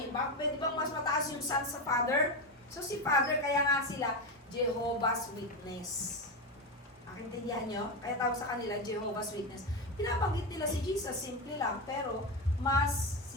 Pwede bang mas mataas yung Son sa Father? So si Father, kaya nga sila Jehovah's Witness. Nakintindihan nyo? Kaya tawag sa kanila Jehovah's Witness. Pinabanggit nila si Jesus, simple lang. Pero mas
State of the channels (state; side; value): normal; both; correlation 0.14